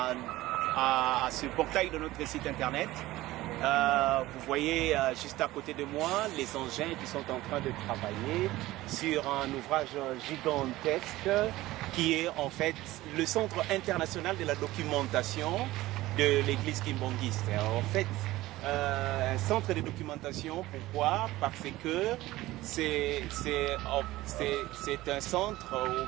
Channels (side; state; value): left; quieter; 17.3 dB